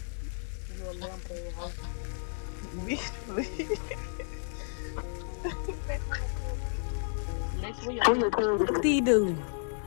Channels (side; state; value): right; silent; digital silence